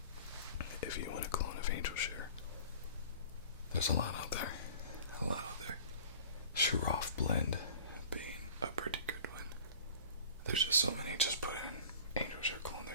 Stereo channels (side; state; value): both; inverted; correlation -0.44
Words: If you want a clone of Angel Share, there's a lot out there. A lot out there. Xerjoff blend being a pretty good one. There's just so many. Just put in Angel Share clone.